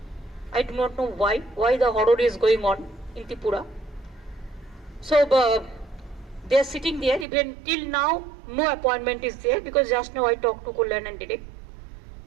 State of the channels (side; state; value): left; drops out; at 7.2 s